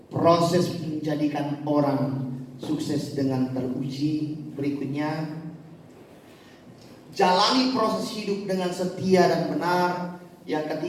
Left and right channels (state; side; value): identical; both; correlation 1.00